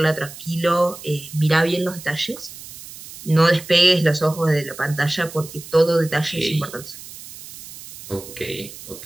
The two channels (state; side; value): noise; right; hiss, 15 dB below the sound